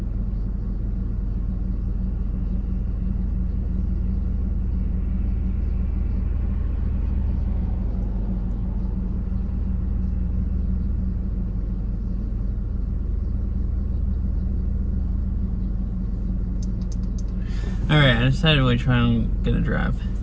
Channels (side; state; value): both; identical; correlation 1.00